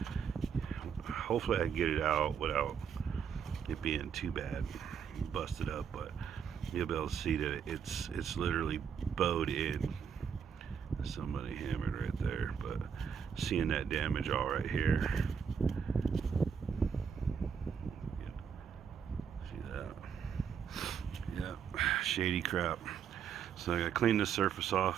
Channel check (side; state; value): left; quieter; 7.3 dB